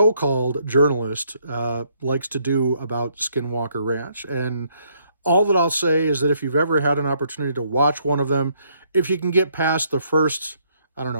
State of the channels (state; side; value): inverted; both; correlation -0.70